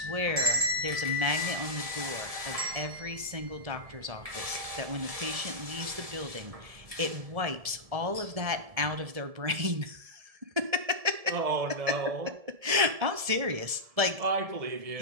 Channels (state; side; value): late; left; 1.7 ms